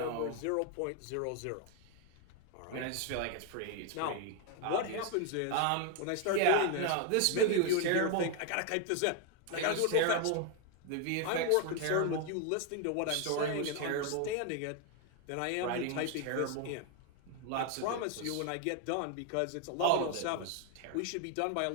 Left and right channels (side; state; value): both; different; correlation 0.01